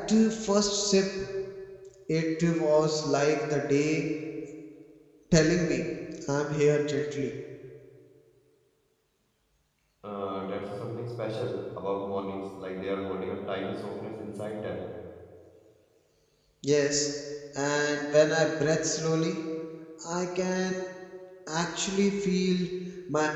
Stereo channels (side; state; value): both; identical; correlation 1.00